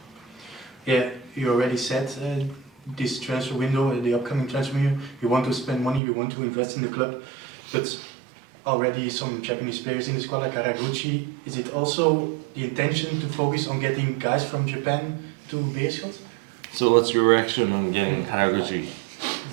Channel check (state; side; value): drops out; left; at 6.0 s